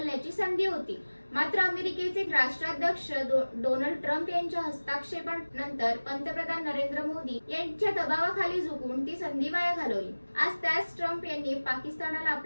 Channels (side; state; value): both; inverted; correlation -1.00